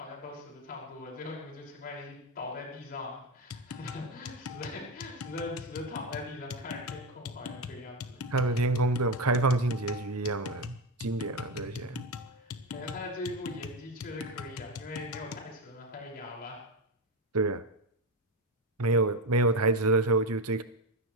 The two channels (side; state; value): both; normal; correlation 0.13